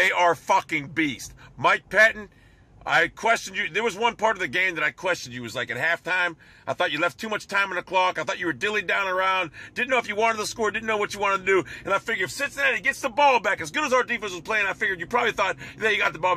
are fucking beasts. Mike Pettin, I questioned you. There was one part of the game that I questioned you. It was like at halftime. I thought you left too much time on the clock. I thought you were dilly down around. Didn't know if you wanted to score. Didn't know what you wanted to do. And I figured if Cincinnati gets the ball back, as good as our defense was playing, I figured you probably thought that you got the ball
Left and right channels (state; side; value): identical; both; correlation 1.00